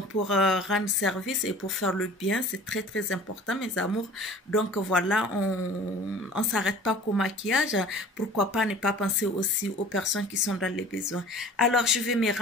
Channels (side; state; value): both; normal; correlation 0.45